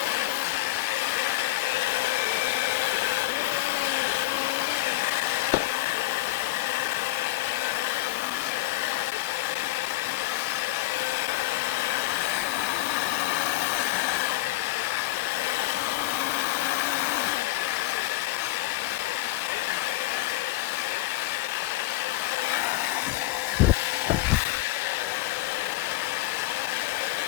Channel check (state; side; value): quieter; right; 18.5 dB